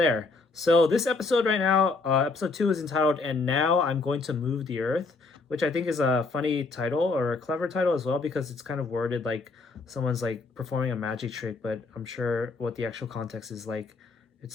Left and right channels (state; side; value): quieter; right; 3.8 dB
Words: So this episode right now, episode 2 is entitled "And Now I'm Going to Move the Earth," which I think is a funny title, or a clever title as well, because it's kind of worded like someone's like performing a magic trick, but I'm sure what the actual context is like,